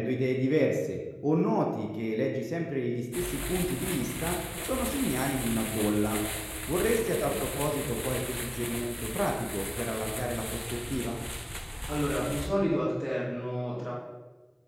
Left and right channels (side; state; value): both; identical; correlation 1.00